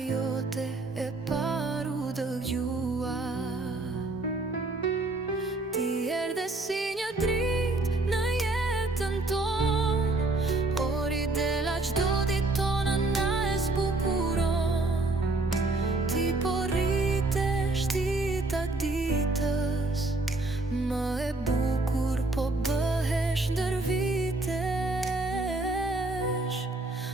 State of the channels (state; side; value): quieter; left; 3.1 dB